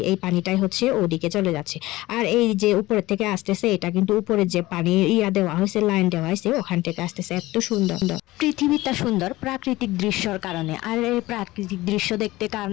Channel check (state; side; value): quieter; right; 18.5 dB